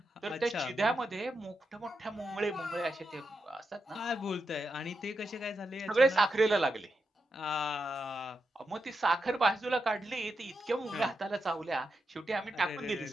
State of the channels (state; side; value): normal; both; correlation 0.86